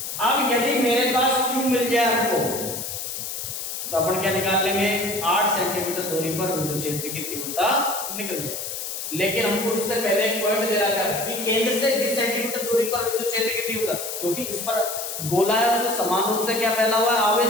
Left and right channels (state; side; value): noise; left; hiss, 6 dB below the sound